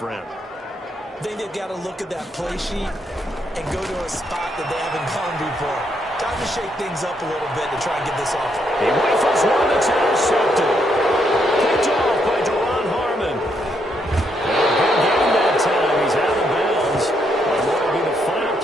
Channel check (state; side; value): normal; both; correlation 0.76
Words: I think they've got to look at that play sheet and go to a spot that they haven't gone before. Time to shake things up a little bit to try and get this off. He waits one that's intercepted. Picked off by Deron Harmon. Good game that time. He's out of bounds. And that'll be the final